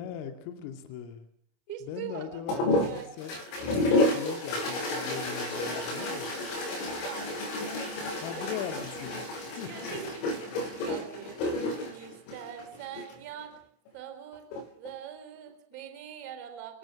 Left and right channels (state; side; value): late; right; 25 ms